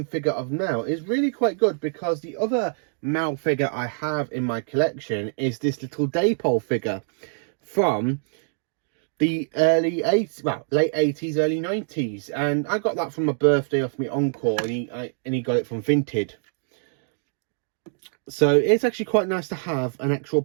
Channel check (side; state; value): left; silent; digital silence